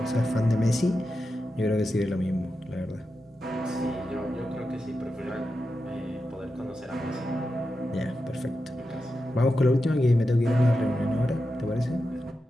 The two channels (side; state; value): both; normal; correlation 0.90